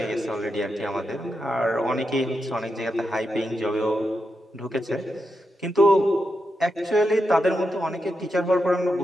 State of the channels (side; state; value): both; normal; correlation 0.86